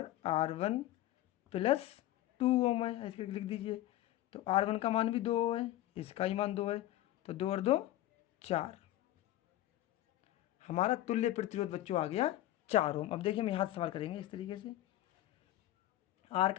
R1 प्लस 2 ओम है, ऐसे लिख दीजिए। तो R1 का मान भी 2 है, इसका ही मान 2 है, तो 2 और 2 4। हमारा तुल्य प्रतिरोध बच्चों आ गया 4 ओम। अब देखिए हम यहाँ से सवाल करेंगे इस तरीके से, R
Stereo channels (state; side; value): quieter; right; 14.5 dB